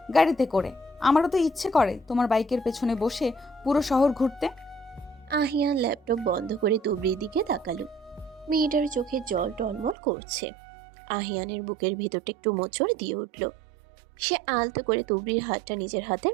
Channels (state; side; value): drops out; left; at 10.0 s